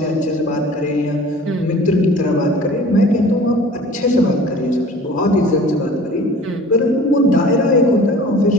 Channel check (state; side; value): normal; both; correlation 0.45